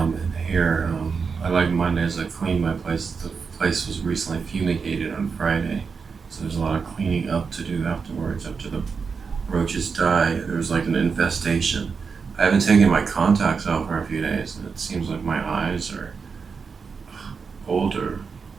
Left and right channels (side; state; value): left; quieter; 5.4 dB